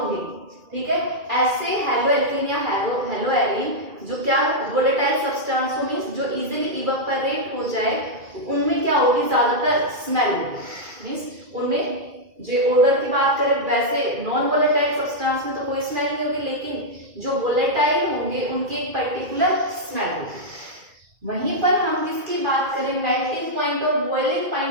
ठीक है, ऐसे हलोएल्केन या हलोएरिन जो क्या वोलेटाइल सब्सटेंस मींस जो इजीली इवेपोरेट हो जाए, उनमें क्या होगी, ज्यादातर स्मेल होगी. मींस उनमें जो ऑर्डर की बात करें वैसे नॉन वोलेटाइल सब्सटेंस में तो कोई स्मेल नहीं होगी, लेकिन जो वोलेटाइल होंगे उनकी एक पर्टिकुलर स्मेल होगी. वहीं पर हम किसकी बात करें, मेल्टिंग पॉइंट और बॉइलिंग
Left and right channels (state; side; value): late; left; 2.3 ms